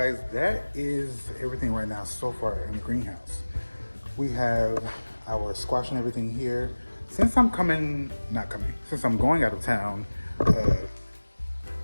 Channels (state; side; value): inverted; both; correlation -1.00